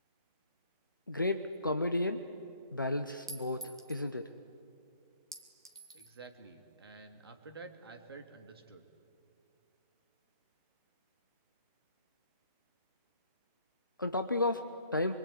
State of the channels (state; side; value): inverted; both; correlation -0.62